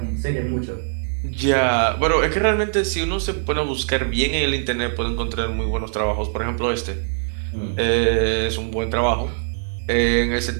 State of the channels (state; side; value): silent; left; digital silence